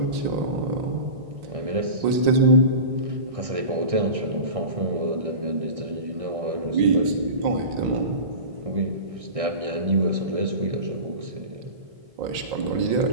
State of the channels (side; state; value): left; late; 1.6 ms